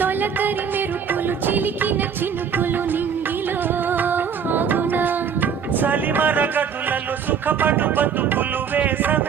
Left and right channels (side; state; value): left; quieter; 7.2 dB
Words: తొలకరి మెరుపులు చిలికిన చినుకులు నింగిలో ఆగునా? సలిమర గదులలో సుఖపడు బతుకులు